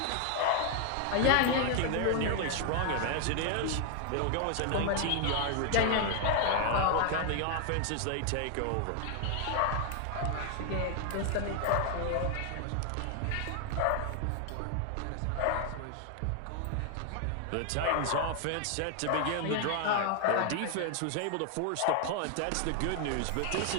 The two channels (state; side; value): different; both; correlation 0.00